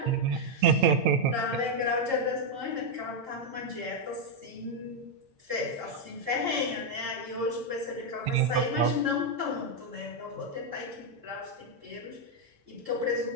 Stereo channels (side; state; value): left; late; 8.8 ms